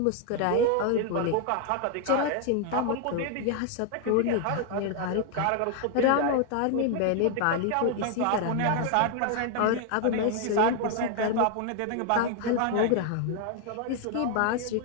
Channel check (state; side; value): different; both; correlation 0.00